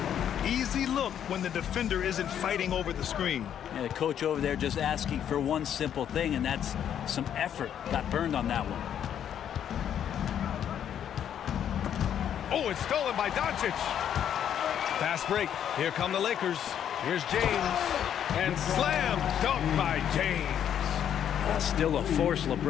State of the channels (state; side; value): quieter; right; 9.5 dB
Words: Easy look when the defender isn't fighting over the screen. Yeah, the coach over there just asking for one simple thing, and that's some effort. Got burned on that one. Oh, it's stolen by Doncic. Fast break. Here come the Lakers. Here's James. And slam dunk by James. Still a force.